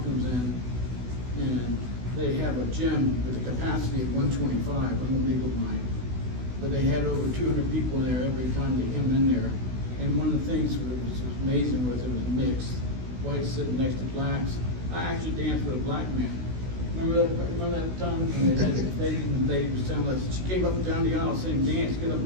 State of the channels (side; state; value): left; late; 16 ms